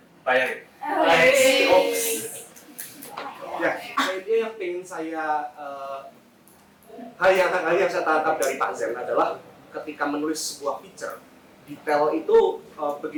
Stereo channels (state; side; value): identical; both; correlation 1.00